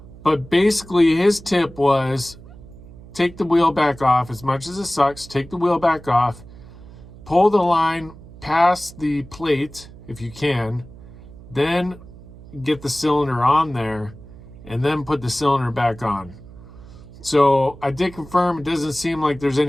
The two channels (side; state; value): right; noise; hum, 19 dB below the sound